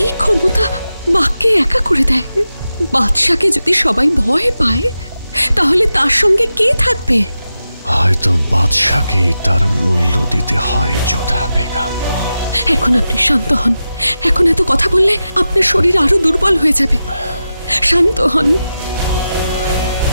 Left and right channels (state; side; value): inverted; both; correlation -0.91